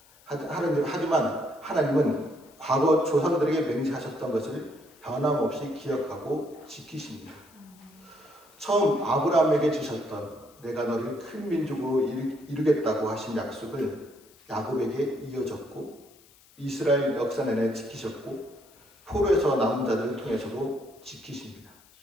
하지만 하나님은 과거 조상들에게 맹세하셨던 것을 변함없이 기억하고 지키십니다. 처음 아브라함에게 주셨던 내가 너를 큰 민족으로 이루겠다고 하신 약속을 야곱에게 이어졌고 이스라엘 역사 내내 지키셨고 포로에서 남은 자들을 통해서도 지키십니다.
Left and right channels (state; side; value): noise; left; hiss, 27 dB below the sound